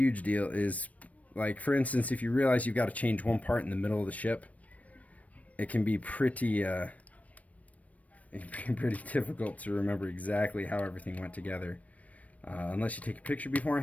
deal is, like, for instance, if you realize you've got to change one part in the middle of the ship, it can be pretty difficult to remember exactly how everything went together. Unless you take a picture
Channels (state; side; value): late; right; 0.068 ms